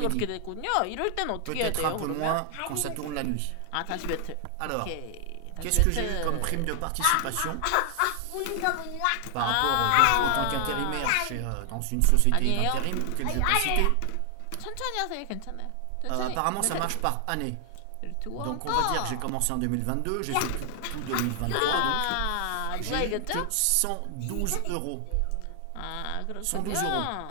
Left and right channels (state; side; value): different; both; correlation 0.00